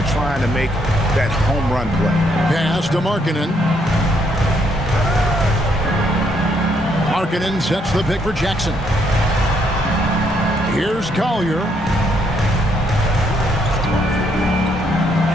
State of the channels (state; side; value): normal; both; correlation 0.72